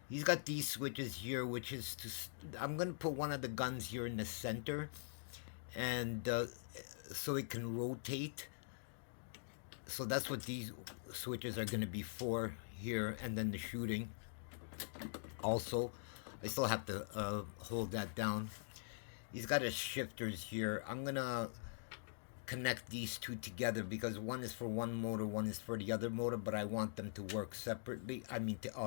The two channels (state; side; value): silent; right; digital silence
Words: he's got these switches here, which is I'm gonna put one of the guns here in the center, and so it can rotate. So that's what these switches are going to be for here, and then the shooting. Also, I still have to hold that down. He's got his shifters here. I'm going to connect these two together because one is for one motor, one is for the other motor, but I want them to work separately. I mean,